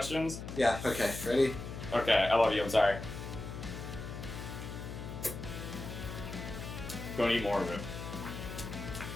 Yeah, okay. Ready? Okay, I love you, I'm sorry. Don't eat more of it.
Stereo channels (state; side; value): noise; left; hum, 8 dB below the sound